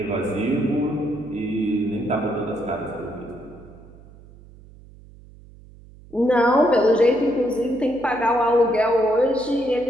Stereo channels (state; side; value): noise; right; hum, 22 dB below the sound